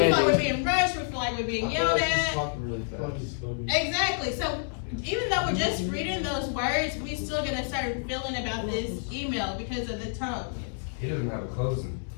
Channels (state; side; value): silent; right; digital silence